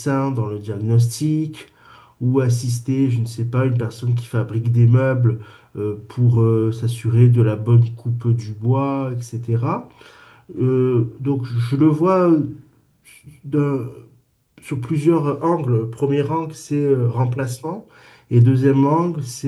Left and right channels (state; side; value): identical; both; correlation 1.00